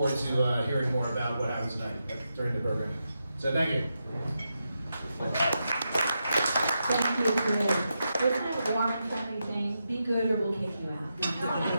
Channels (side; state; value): both; inverted; correlation -0.86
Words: to hearing more about what happens tonight during the program. So thank you. Thank you, Chris. Isn't it a warm and friendly thing? Be good or we'll kick you out.